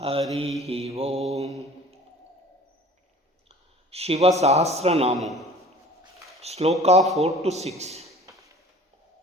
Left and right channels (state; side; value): normal; both; correlation 0.46